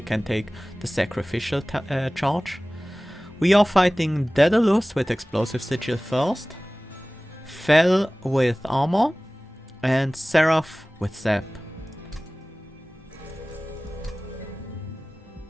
can take the Sacrificial charge. We are fighting Daedalus with Explosive Sigil first, Fel with Armor, and Seraph with Zap.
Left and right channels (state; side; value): normal; both; correlation 0.98